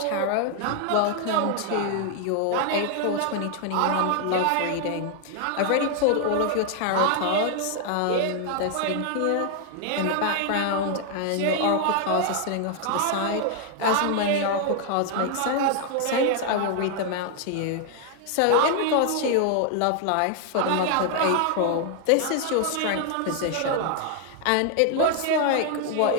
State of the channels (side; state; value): both; different; correlation 0.00